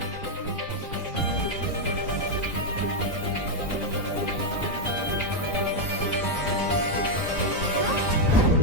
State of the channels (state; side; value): normal; both; correlation 0.01